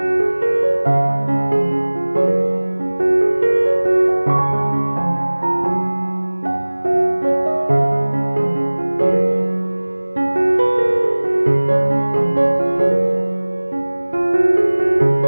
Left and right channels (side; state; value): both; inverted; correlation -1.00